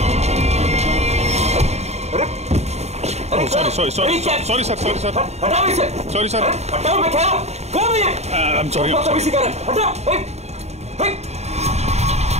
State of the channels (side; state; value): left; late; 0.32 ms